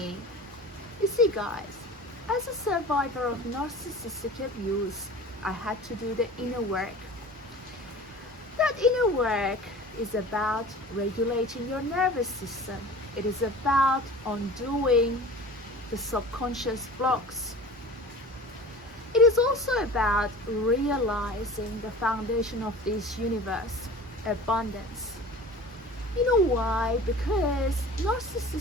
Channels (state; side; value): normal; both; correlation 0.39